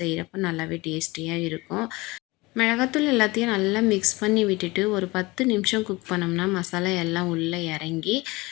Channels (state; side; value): quieter; right; 22.7 dB